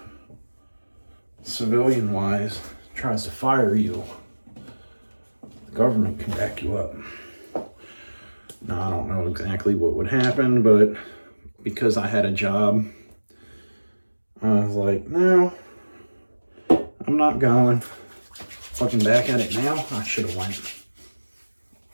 civilian wise, tries to fire you, the government can back you up. Now, I don't know exactly what would happen, but because I had a job, I was like, no, I'm not going. Looking back at it now, I should have went.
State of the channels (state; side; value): inverted; both; correlation -1.00